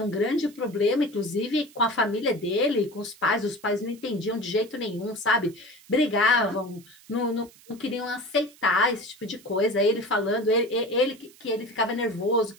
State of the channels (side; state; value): right; noise; hiss, 25 dB below the sound